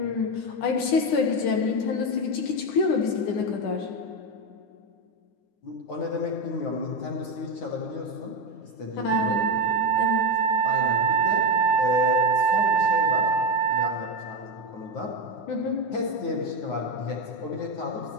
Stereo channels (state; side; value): late; right; 10 ms